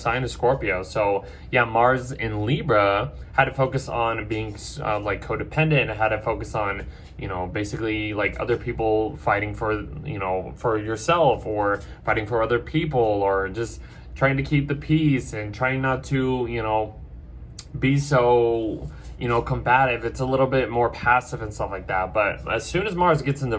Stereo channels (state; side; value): identical; both; correlation 1.00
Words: of Scorpio. So yeah, Mars in Libra had to focus on being like codependent, had to focus on, basically like other people fighting for, for yourself, or fighting for other people, or just trying to keep the peace and trying not to, be so, combative. It's a little bit more passive and stuff like that. But as soon as Mars gets